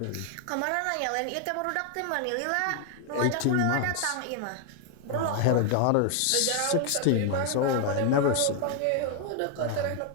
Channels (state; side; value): different; both; correlation 0.00